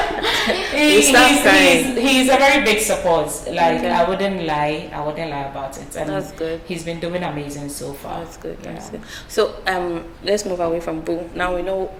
He's a very big support. Like I wouldn't lie about it. And that's good. He's been doing amazing so far. That's good. Yeah. That's good. So let's move away from Boo. Now we know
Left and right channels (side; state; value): both; identical; correlation 1.00